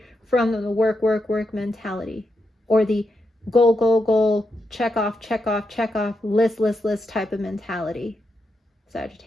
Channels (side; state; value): both; normal; correlation 0.84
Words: from the work mentality, or the goal, check off, list type of mentality,